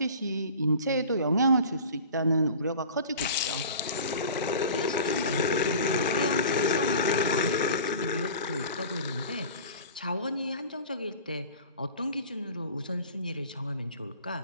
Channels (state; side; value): inverted; both; correlation -0.40